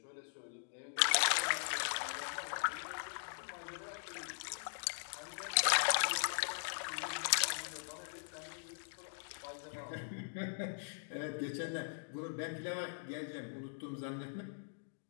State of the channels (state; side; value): silent; right; digital silence